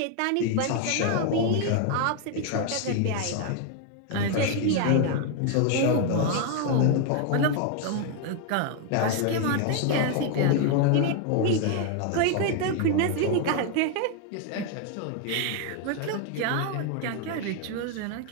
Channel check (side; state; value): both; different; correlation 0.01